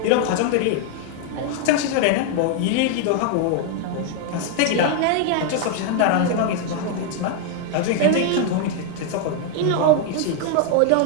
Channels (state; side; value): different; both; correlation 0.01